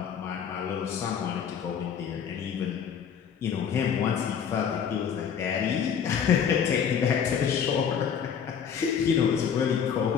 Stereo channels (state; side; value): quieter; right; 7.6 dB